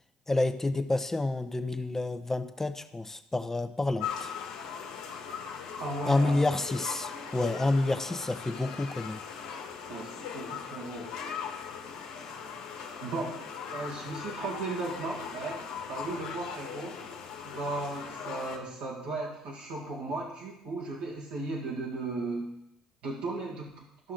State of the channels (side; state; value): both; normal; correlation 0.80